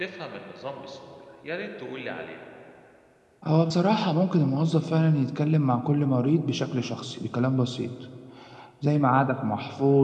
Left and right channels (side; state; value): both; identical; correlation 1.00